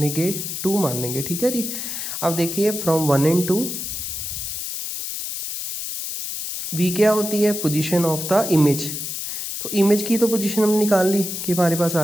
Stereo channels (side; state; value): left; noise; hiss, 5 dB below the sound